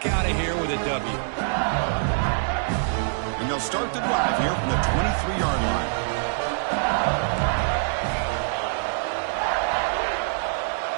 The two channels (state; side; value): silent; left; 62 dB below the other